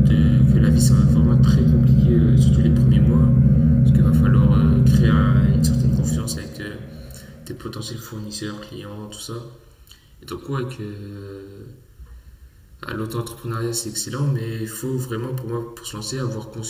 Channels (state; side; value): identical; both; correlation 1.00